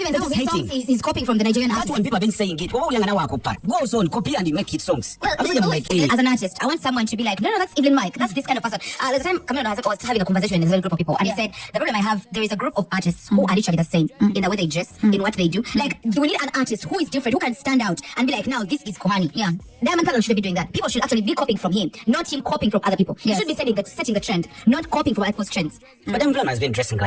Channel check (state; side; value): identical; both; correlation 1.00